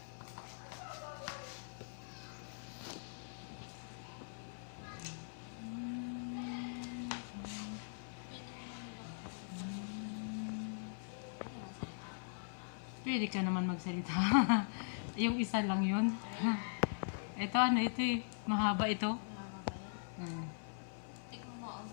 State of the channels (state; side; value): silent; right; 50 dB below the other